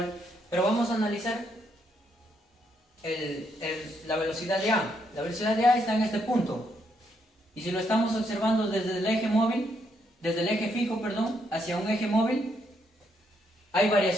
pero vamos a analizar la velocidad de A. La velocidad de A está en este punto, y si lo estamos observando desde el eje móvil, desde el eje fijo, perdón, hacia un eje móvil, hay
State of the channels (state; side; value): normal; both; correlation 0.75